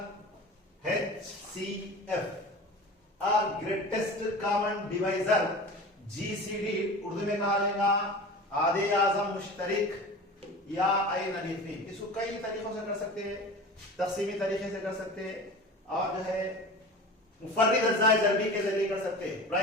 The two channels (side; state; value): both; normal; correlation 0.35